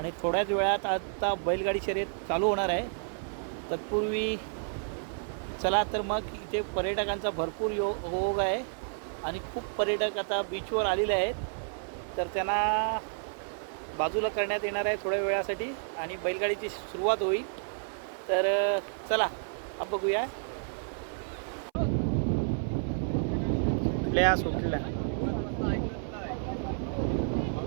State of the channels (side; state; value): left; silent; 57 dB below the other